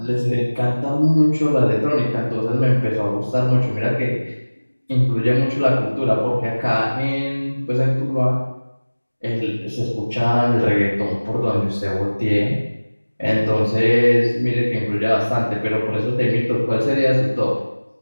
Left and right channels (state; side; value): inverted; both; correlation -1.00